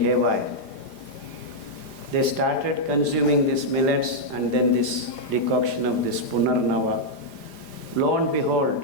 They started consuming these millets and then this decoction of this Punarnava. Lo and behold,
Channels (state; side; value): late; right; 4.9 ms